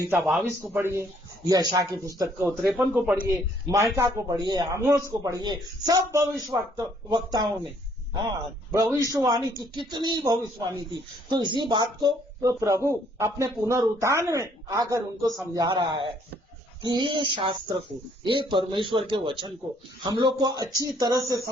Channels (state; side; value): normal; both; correlation 0.65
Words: 22 को पढ़िए, यशा की पुस्तक को 53 को पढ़िए, माइका को पढ़िए, आमोस को पढ़िए, सब वक्ताओं ने भविष्यवाणी की, कितनी भविष्यवाणी थी। तो इसी बात को तो प्रभु अपने पुनरुत्थान में आकर उनको समझा रहा है कि ये शास्त्र को, ये परमेश्वर के वचन को हम लोग को अच्छी तरह से